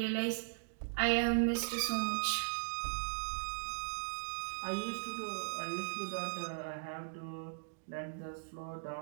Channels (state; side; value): silent; left; digital silence